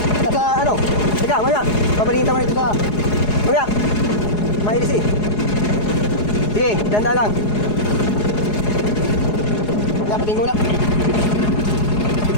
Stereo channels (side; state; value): right; late; 4.8 ms